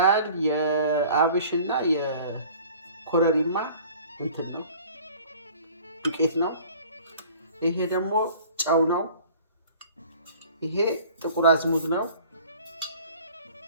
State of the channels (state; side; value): inverted; both; correlation -0.48